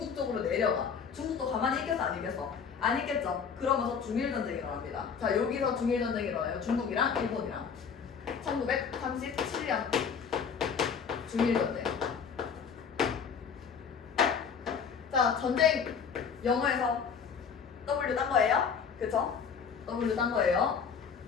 쪽으로 내려가. 중국도 가만히 있겠어 안 있겠어? 안 있겠죠? 그러면서 중일전쟁이 일어납니다. 자, 여기서 중일전쟁이 일어나요. 중국이랑 일본이랑. 1937년 중일전쟁. 자, 전쟁 영어에서 W 딴 거예요? 그쵸? W 딴 거예요.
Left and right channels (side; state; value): right; quieter; 6.5 dB